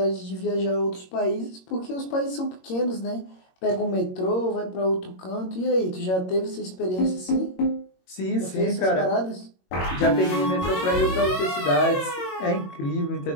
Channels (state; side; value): late; right; 22 ms